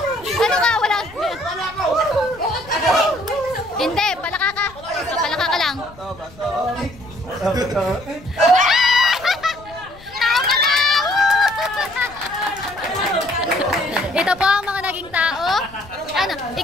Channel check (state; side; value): noise; left; rumble, 22 dB below the sound